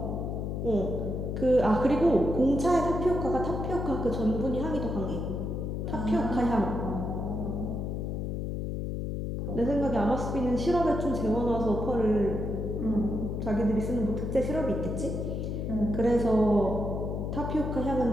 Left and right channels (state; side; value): noise; left; hum, 3 dB below the sound